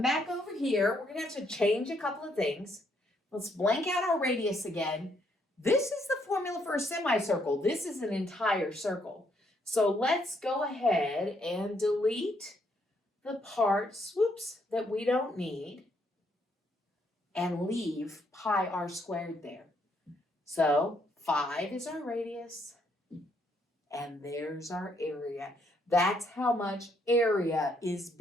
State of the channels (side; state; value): both; normal; correlation 0.72